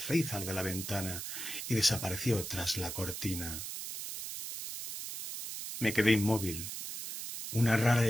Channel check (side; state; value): right; noise; hiss, 7 dB below the sound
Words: de la ventana y desapareció tras la cortina. Me quedé inmóvil. Una rara